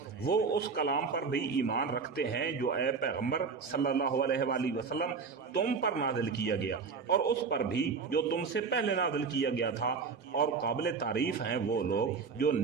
وہ اس کلام پر بھی ایمان رکھتے ہیں جو اے پیغمبر صلی اللہ علیہ وآلہ وسلم تم پر نازل کیا گیا، اور اس پر بھی جو تم سے پہلے نازل کیا گیا تھا، اور قابل تعریف ہیں وہ لوگ جو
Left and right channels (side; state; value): left; quieter; 5.2 dB